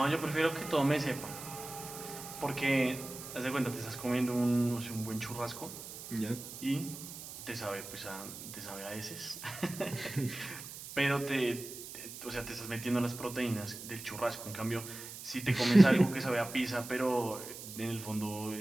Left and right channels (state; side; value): noise; right; hiss, 11 dB below the sound